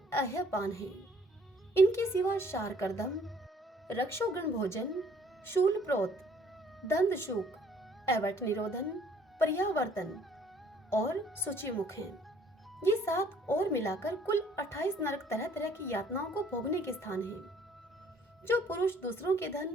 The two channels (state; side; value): normal; both; correlation 0.59